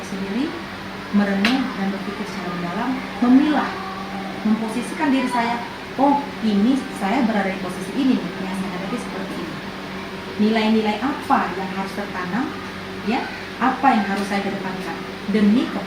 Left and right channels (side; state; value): both; identical; correlation 1.00